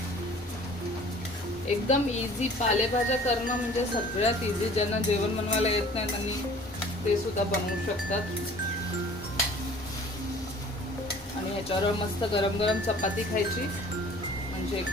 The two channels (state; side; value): normal; both; correlation 0.49